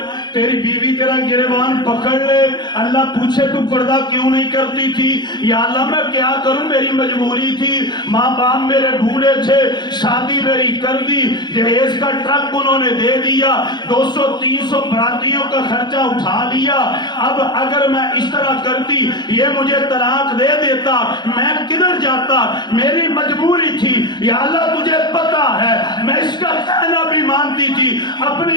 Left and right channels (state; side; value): late; right; 0.21 ms